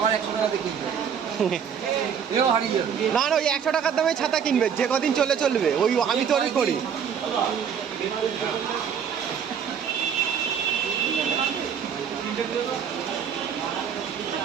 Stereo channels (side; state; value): left; quieter; 7.7 dB